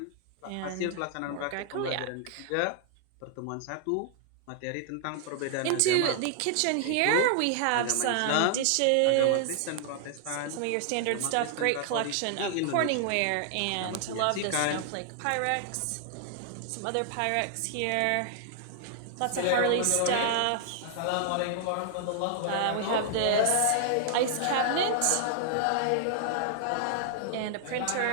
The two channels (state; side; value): different; both; correlation -0.01